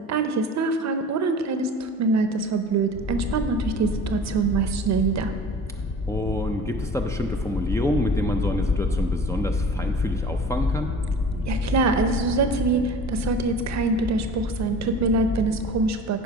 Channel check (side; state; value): both; normal; correlation 0.41